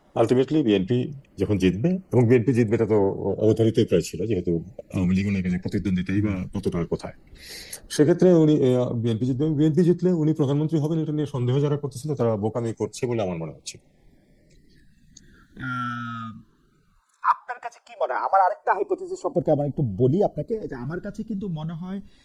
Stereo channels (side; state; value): both; identical; correlation 1.00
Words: আলটিমেটলি বিএনপি যখন জিতবে, এবং বিএনপি জিতবে এটা তো অবধারিতই প্রায় ছিল, যেহেতু আওয়ামী লীগ ওনার কাছে প্রতিদ্বন্দ্বিতাই বা কতটা কোথায়। সেক্ষেত্রে উনি বিএনপি জিতবে, বিএনপি জিতলে উনি প্রধানমন্ত্রী হবেন, এটা নিয়ে সন্দেহ যারা করতেছিল তারা বোকামি করছে বলে আমার মনে হচ্ছে। আপনার কাছে কি মনে হয়? আমার আরেকটা হাইপোথিসিস সম্পর্কে আমার একটু বলি আপনাকে, যে আমার কাছে কিন্তু মনে হয়